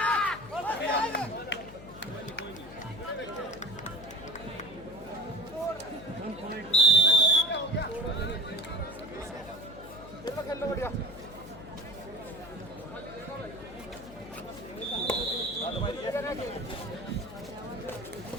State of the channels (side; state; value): left; noise; hum, 16 dB below the sound